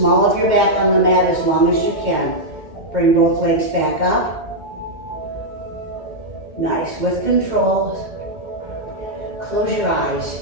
of your back on the mat as long as you can. Bring both legs back up. Nice. With control. Close your eyes.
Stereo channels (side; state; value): left; late; 2.1 ms